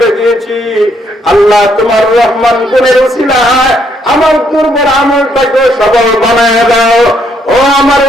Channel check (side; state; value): both; normal; correlation 0.72